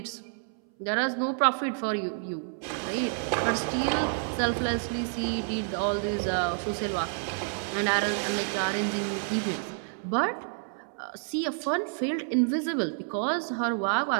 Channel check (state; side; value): silent; left; 59 dB below the other